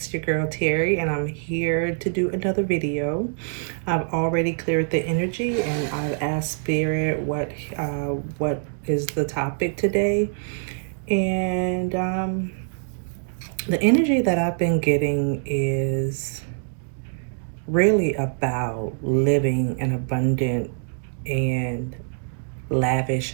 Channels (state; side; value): silent; left; digital silence